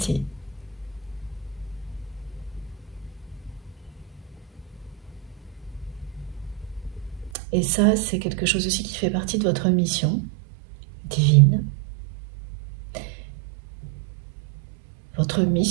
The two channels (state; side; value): drops out; left; at 7.3 s